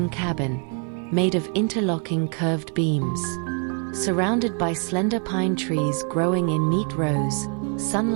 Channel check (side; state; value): left; quieter; 38.1 dB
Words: cabin, made of interlocking curved beams. Surrounded by slender pine trees growing in neat rows,